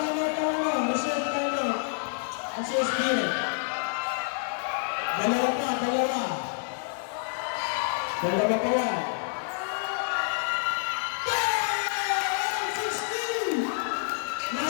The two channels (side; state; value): right; silent; digital silence